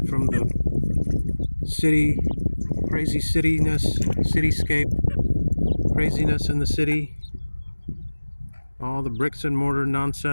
from the city, crazy cityscape, craziness in the city, all the bricks and mortar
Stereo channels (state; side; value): inverted; both; correlation -1.00